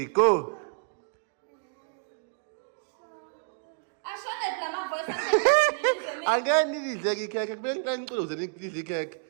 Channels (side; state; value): left; silent; digital silence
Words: go. Again, need the cake. Then close the cake.